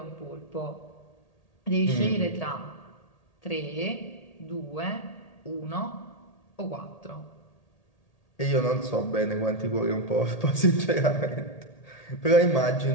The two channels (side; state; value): right; late; 1.8 ms